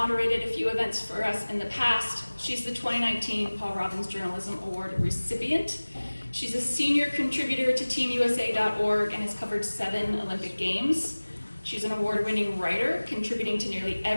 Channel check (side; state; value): both; inverted; correlation -1.00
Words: a few events for us in the past. She's the 2019 Paul Robbins Journalism Award recipient. She's a senior contributor to teamusa.org and has covered 7 Olympic Games. She's an award-winning writer, contributing to nearly